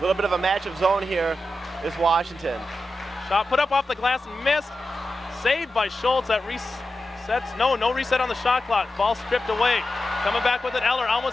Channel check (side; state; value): both; normal; correlation 0.91